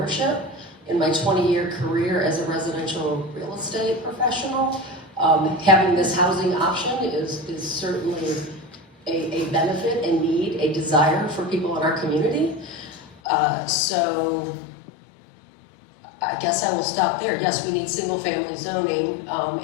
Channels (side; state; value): right; drops out; at 13.2 s